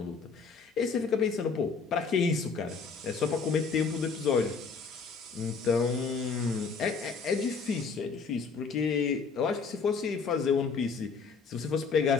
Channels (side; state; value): right; quieter; 5.1 dB